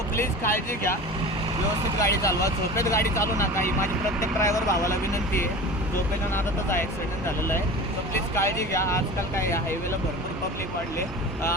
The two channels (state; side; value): normal; both; correlation 0.34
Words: प्लीज काळजी घ्या, व्यवस्थित गाडी चालवा, झोपेत गाडी चालू नका. ही माझी प्रत्येक ड्रायव्हर भावाला विनंती आहे. झोपेच्या नादातच हा ॲक्सिडेंट झालेला आहे. सो प्लीज काळजी घ्या. आजकाल काय या हायवेला भरपूर पब्लिक वाढले.